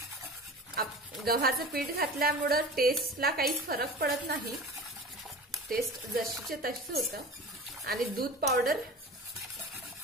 गव्हाचं पीठ घातल्यामुळे टेस्टला काही फरक पडत नाही, टेस्ट जशीचे तशी होतं आणि दूध पावडर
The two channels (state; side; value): normal; both; correlation 0.35